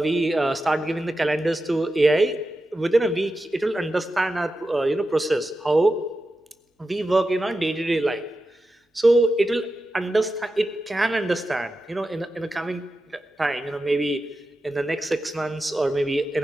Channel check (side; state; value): both; normal; correlation 0.91